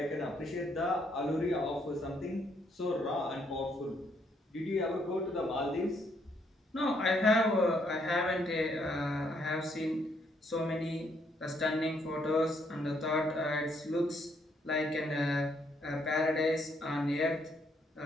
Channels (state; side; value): normal; both; correlation 0.71